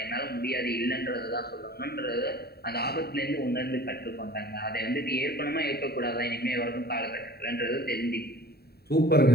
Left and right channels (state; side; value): late; right; 0.46 ms